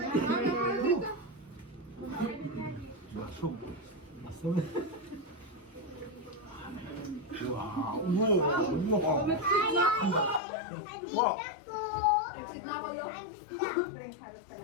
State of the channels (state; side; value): drops out; right; at 10.4 s